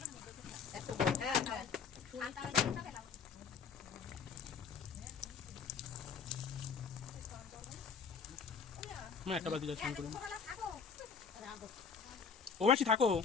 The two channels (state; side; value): quieter; right; 6.1 dB